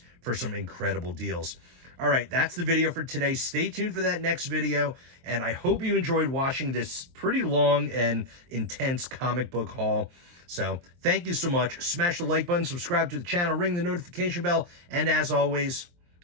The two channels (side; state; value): left; late; 23 ms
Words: for some incredible deals. All right, that's the video for today. Stay tuned for that next video, and I hope you enjoyed watching this pretty long and intense comic book haul. So thank you so much. Smash the like button, subscribe to the channel, ring the notification bell, and as always,